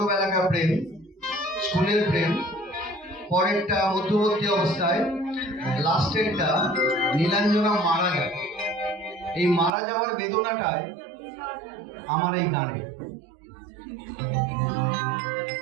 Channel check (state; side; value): drops out; left; at 9.7 s